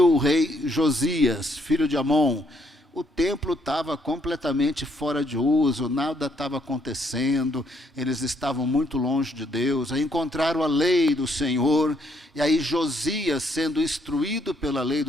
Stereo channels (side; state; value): both; normal; correlation 0.71